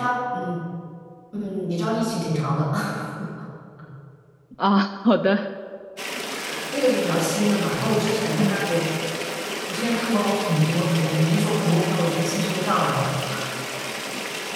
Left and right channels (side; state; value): both; identical; correlation 1.00